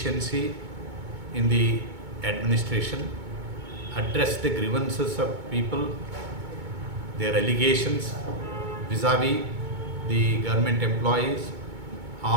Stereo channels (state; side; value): late; left; 2.2 ms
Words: in the administration, address the grievances of people, their allegations vis-a-vis the government employees